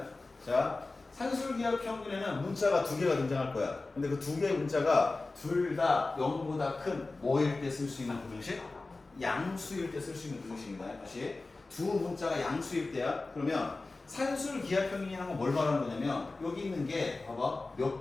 자, 산술기하 평균에는 문자가 두 개가 등장할 거야. 근데 그 두 개의 문자가 둘 다 0보다 큰 뭐일 때 쓸 수 있는 부등식? 양수일 때 쓸 수 있는 부등식입니다. 다시 두 문자가 양수일 때야. 그러면 산술기하 평균이라는 건 뭘 말하는 거냐면 여기 있는 게 봐봐 몇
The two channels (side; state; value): right; quieter; 3.4 dB